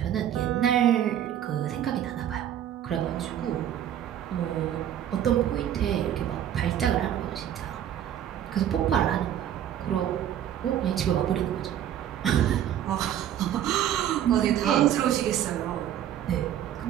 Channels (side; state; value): left; quieter; 10.7 dB